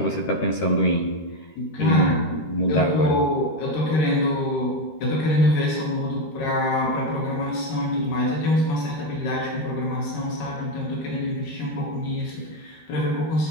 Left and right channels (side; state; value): right; late; 13 ms